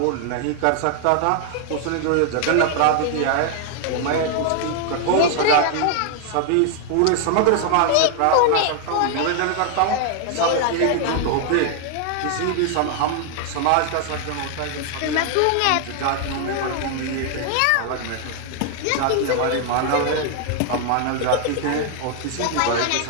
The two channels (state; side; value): different; both; correlation 0.00